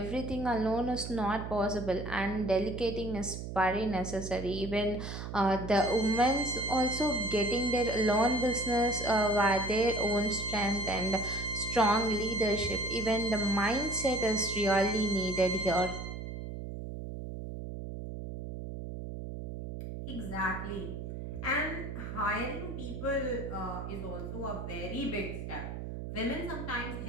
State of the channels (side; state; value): right; noise; hum, 7 dB below the sound